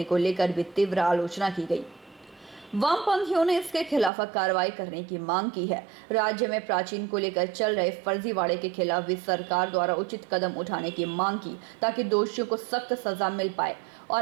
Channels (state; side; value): drops out; left; at 4.1 s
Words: को लेकर भी तीव्र आलोचना की गई। वामपंथियों ने इसके खिलाफ कार्रवाई करने की मांग की है। राज्य में प्राचीन को लेकर चल रहे फर्जीवाड़े के खिलाफ भी सरकार द्वारा उचित कदम उठाने की मांग की, ताकि दोषियों को सख्त सजा मिल पाए